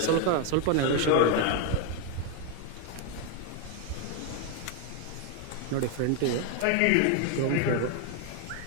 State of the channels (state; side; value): different; both; correlation 0.01